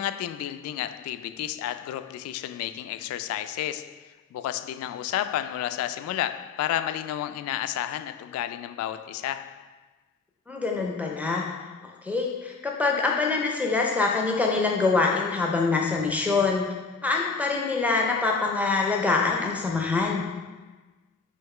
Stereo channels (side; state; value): right; quieter; 4.6 dB